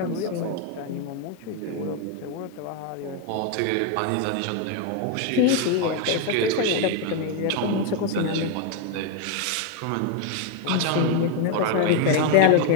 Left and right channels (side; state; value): both; different; correlation 0.01